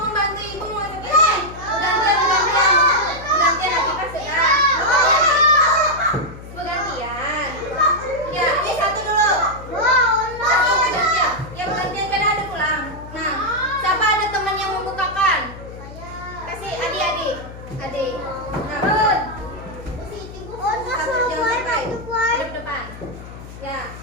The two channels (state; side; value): noise; left; hum, 14 dB below the sound